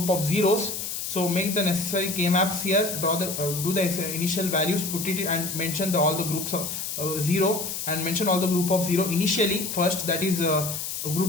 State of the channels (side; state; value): left; noise; hiss, 5 dB below the sound